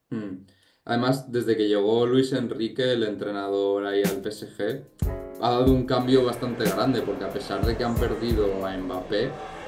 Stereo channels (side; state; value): both; identical; correlation 1.00